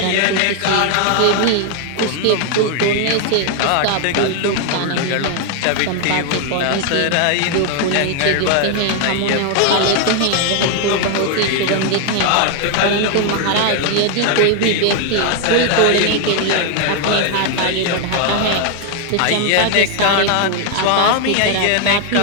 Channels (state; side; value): different; both; correlation 0.01